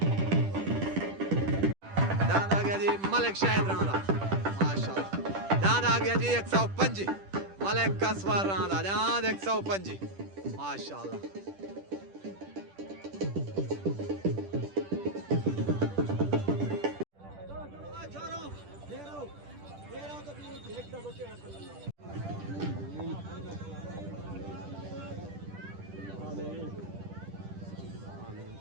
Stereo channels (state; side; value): late; left; 10 ms